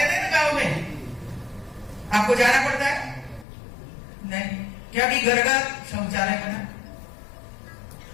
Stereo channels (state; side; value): drops out; right; at 3.5 s